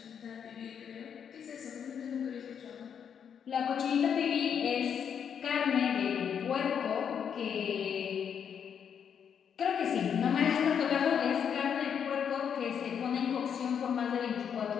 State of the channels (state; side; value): quieter; right; 7.8 dB